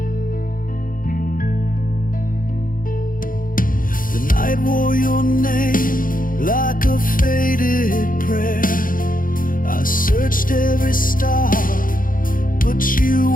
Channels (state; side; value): late; right; 0.40 ms